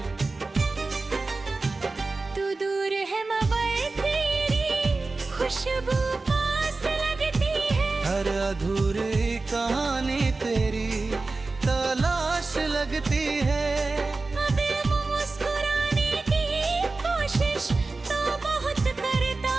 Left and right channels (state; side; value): quieter; left; 3.6 dB